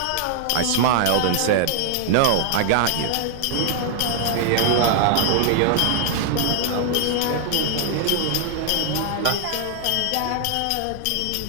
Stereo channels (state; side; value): different; both; correlation 0.00